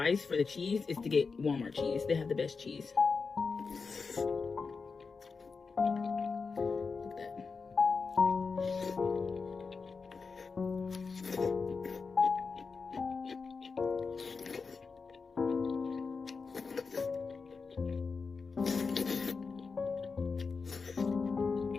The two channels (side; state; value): right; quieter; 4.8 dB